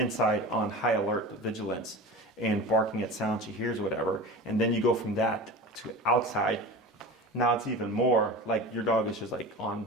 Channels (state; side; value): normal; both; correlation 0.32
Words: on high alert vigilance and barking at sound she hears, whatever, and then you go from that to outside, now it's even more like your dog is just like